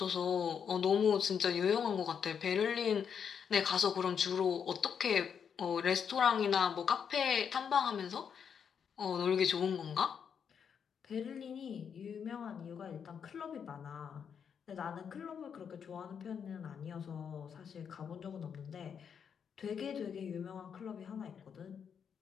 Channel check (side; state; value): right; quieter; 7.3 dB